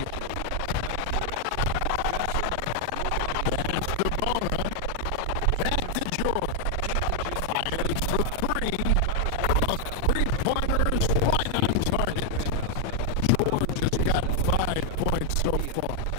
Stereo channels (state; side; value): different; both; correlation 0.00